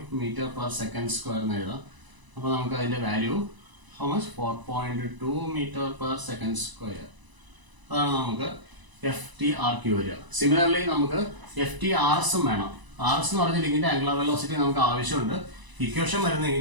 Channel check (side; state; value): left; late; 1.0 ms